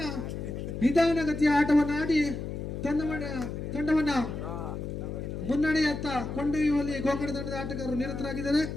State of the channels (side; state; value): left; noise; hum, 6 dB below the sound